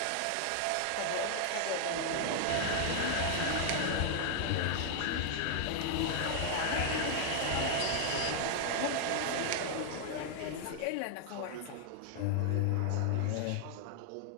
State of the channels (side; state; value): both; different; correlation 0.00